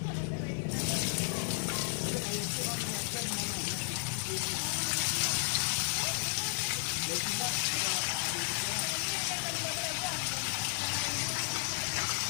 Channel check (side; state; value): right; silent; 55 dB below the other